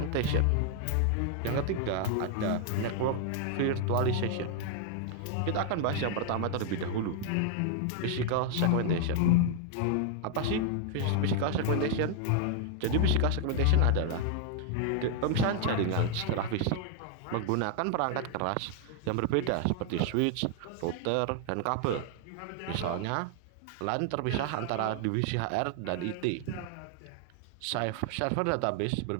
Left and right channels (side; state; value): both; different; correlation 0.00